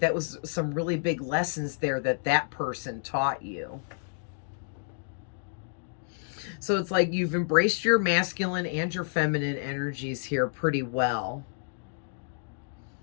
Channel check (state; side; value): silent; right; digital silence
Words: was some really big lessons there that person taught you. So it's like you've embraced your masculine and your feminine energies here pretty well.